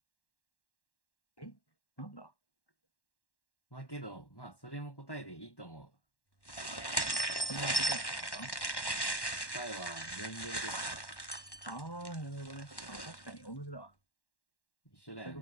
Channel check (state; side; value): late; right; 1.1 ms